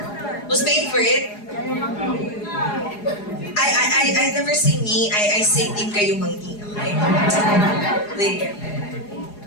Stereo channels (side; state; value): right; late; 4.8 ms